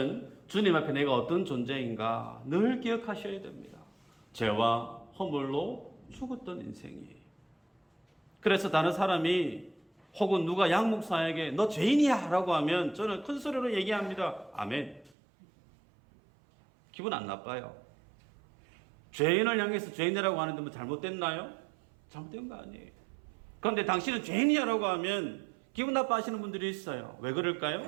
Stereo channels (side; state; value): left; drops out; at 15.2 s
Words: 주님 앞에 내가 어떤 존재인가 늘 기억하셔야 됩니다. 죄와 허물로 죽었던 인생이에요. 그래서 다른 사람이 혹은 누가 양 목사에게 너 죄인이야 라고 하면 저는 큰 소리로 얘기합니다. 아멘. 기분 안 나빠요. 죄인을 향해서 죄인이라고 하는데 뭐 잘못됐나요? 잘못된 거 아니에요. 그런데 당신은 죄인이야 라고 하면 기분 나빠하시는 분들이 있어요. 왜